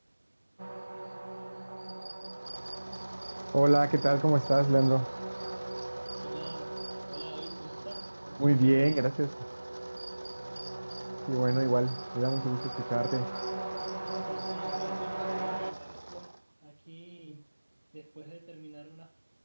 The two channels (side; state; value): both; inverted; correlation -1.00